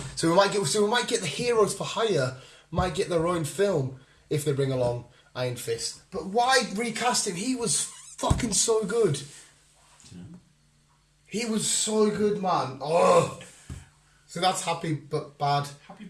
So we might get the heroes for hire. Might get their own film if they bring along Iron Fist. But why recast him? He was fucking so good. He was so good, man. Oh. So that's happy but bad. Happy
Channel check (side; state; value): both; identical; correlation 1.00